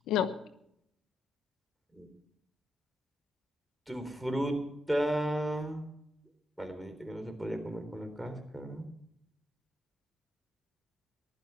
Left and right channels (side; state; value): both; normal; correlation 0.81